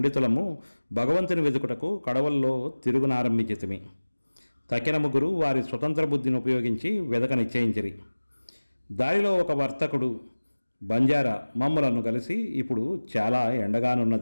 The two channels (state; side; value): inverted; both; correlation -1.00